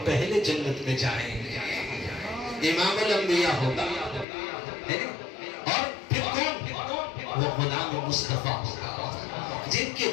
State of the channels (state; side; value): drops out; right; at 4.2 s